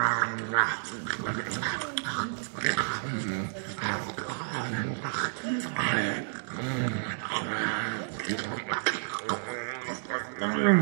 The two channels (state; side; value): silent; left; digital silence